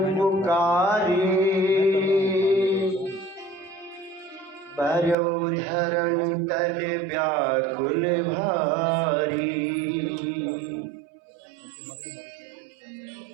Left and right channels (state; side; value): drops out; left; at 5.2 s